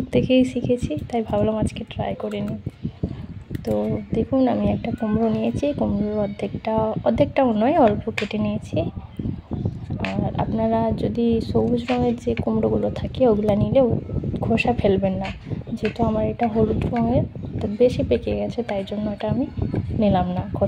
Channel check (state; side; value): identical; both; correlation 1.00